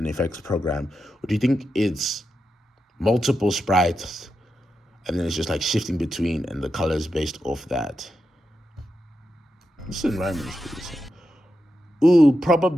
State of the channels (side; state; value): both; normal; correlation 0.87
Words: effects program? Or do you think it's multiple sprites, and then it's just like shifting between, and the colors based off that? This environment is pretty simple. Ooh,